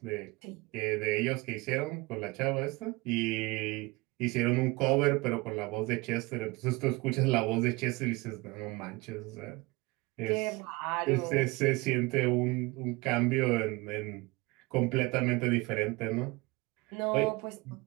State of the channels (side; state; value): left; quieter; 23.6 dB